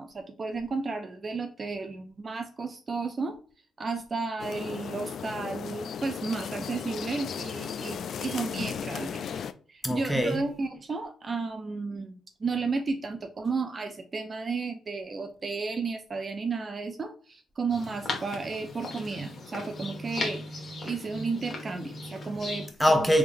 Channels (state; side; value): normal; both; correlation 0.84